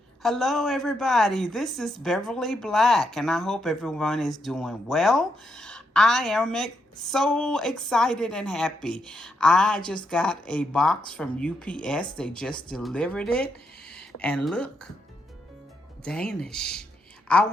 Hello, everybody. This is Beverly Black, and I hope everyone is doing well. I am so excited and happy. I just got a box from UPS. They just delivered it. And look, Danish. I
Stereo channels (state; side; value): normal; both; correlation 0.80